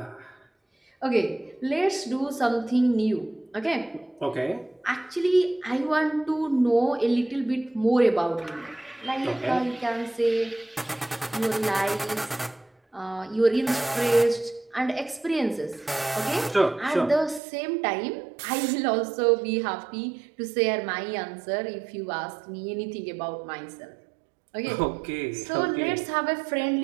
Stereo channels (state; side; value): drops out; left; at 17.4 s